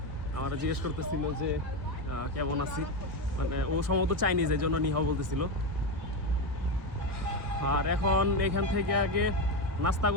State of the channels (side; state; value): left; late; 1.5 ms